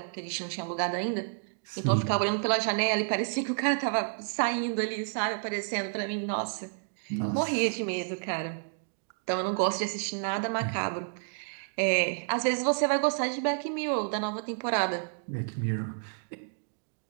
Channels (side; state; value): left; silent; digital silence